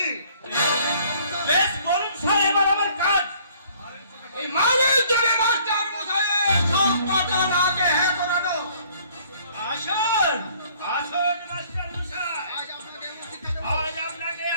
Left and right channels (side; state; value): both; inverted; correlation -0.59